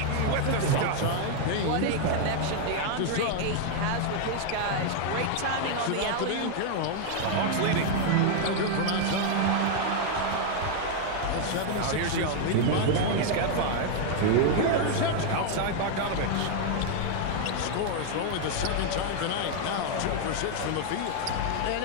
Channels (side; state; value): both; different; correlation 0.00